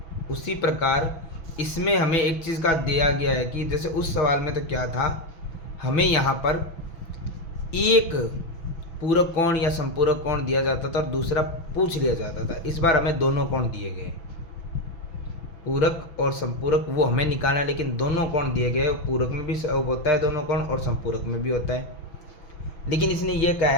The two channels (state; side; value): late; right; 6.1 ms